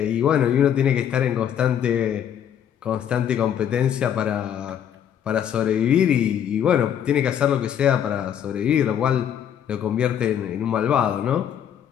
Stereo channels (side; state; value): right; quieter; 9.3 dB